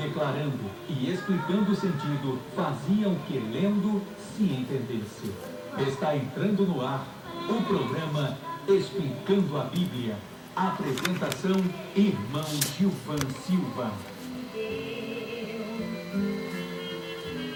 declarando e explicando o sentido, fazia o que lendo se entendesse. Está entrando no ar o programa Explicando a Bíblia. Apresentação, irmão Gilvan Silva.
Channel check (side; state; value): both; identical; correlation 1.00